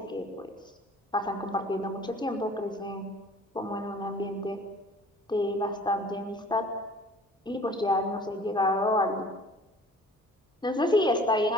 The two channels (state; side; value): normal; both; correlation 0.49